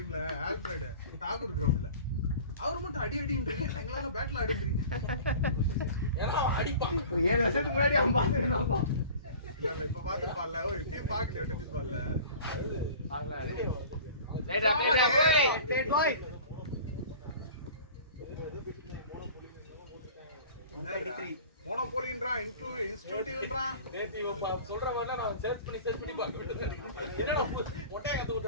ஆல்ஃபிரட் டாகூர் கிரவுண்ட்ல. அவர் மட்டும் அடி அடின்றீங்க. எங்களால பேட்ல அடின்றீங்க. ஏன்னா அடிப்பான். 7 வருஷத்துக்கு முன்னாடி அவன் பாத்துறானப்பா. இல்ல இப்ப பாத்துப்பான்ல. ஓ டீம் பாக்கல டென்னிஸ் பால்ல. ரைட் போய். டேட் பாய். மோனோபோலின்றான், இன்ஸ்டிடியூட்ன்றான். நேத்து இவ சொல்ற மாதிரிலாம் நான் சர்ச் பண்ணி பார்க்க என்னடா ஒட்டை கத்து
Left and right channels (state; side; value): inverted; both; correlation -0.42